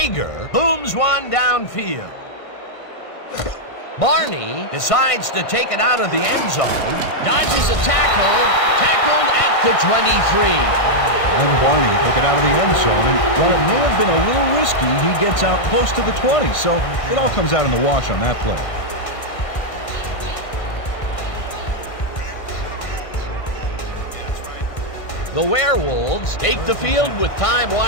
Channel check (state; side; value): late; right; 1.5 ms